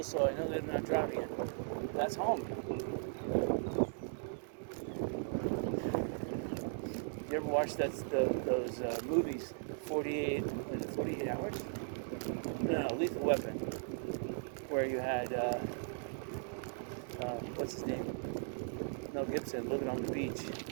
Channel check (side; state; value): left; silent; digital silence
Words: so I know they're not driving it. That's home. You ever watch those movies, 48 Hours? No, Lethal Weapon, where you had, what's his name? Mel Gibson living on the beach in